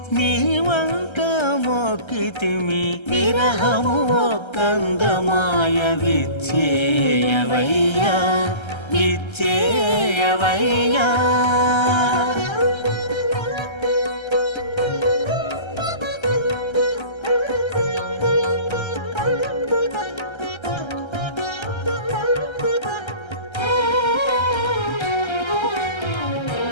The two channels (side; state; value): right; late; 1.3 ms